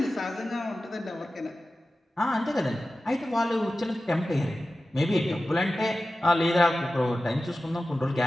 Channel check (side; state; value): both; normal; correlation 0.94